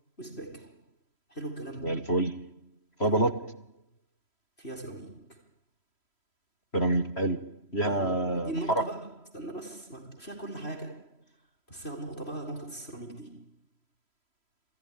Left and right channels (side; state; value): right; late; 3.1 ms